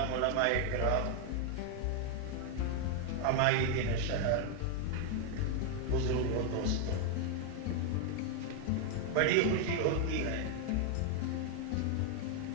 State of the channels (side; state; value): both; different; correlation 0.00